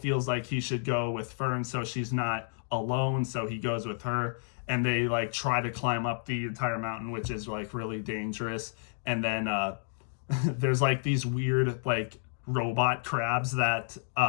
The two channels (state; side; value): silent; right; digital silence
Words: like he should go with Fern so she's not alone, so he goes with her. And they like try to climb up the entire mountain, which is like really dangerous. And then there's like these weird like robot crabs that